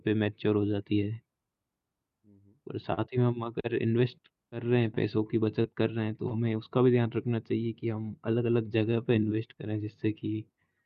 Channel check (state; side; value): identical; both; correlation 1.00